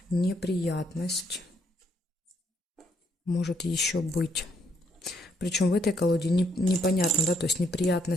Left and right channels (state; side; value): normal; both; correlation 0.71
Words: Неприятность может еще быть. Причем в этой колоде непонятно, да, то есть